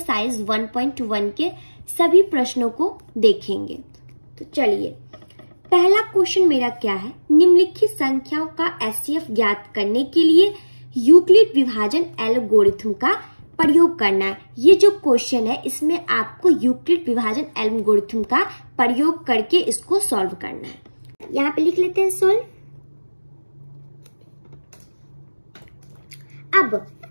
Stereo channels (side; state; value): both; inverted; correlation -1.00